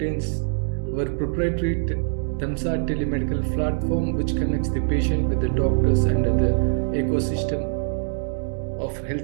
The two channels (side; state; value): left; silent; digital silence